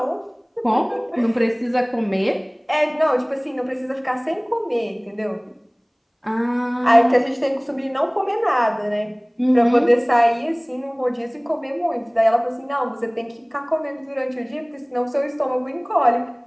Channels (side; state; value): both; identical; correlation 1.00